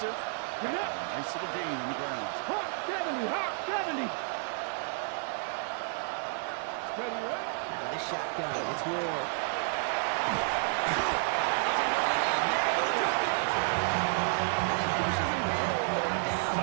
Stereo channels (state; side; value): silent; left; 57 dB below the other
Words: Nice little gain on the ground. Hawk 70. Ready. With a shotgun, it's Ward.